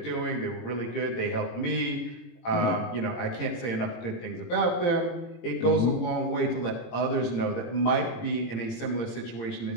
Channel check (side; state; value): right; late; 17 ms